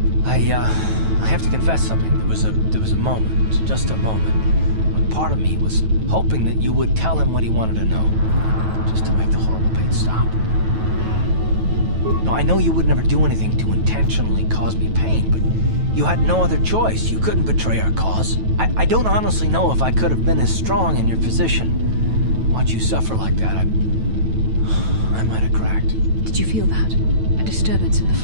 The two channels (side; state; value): left; late; 9.2 ms